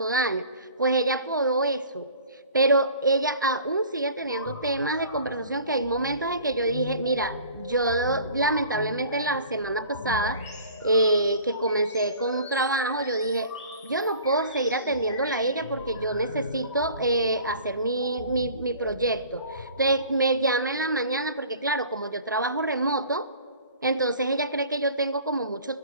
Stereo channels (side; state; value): both; inverted; correlation -0.46